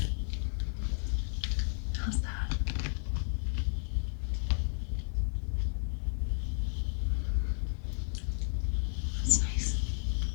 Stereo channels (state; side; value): silent; right; 56 dB below the other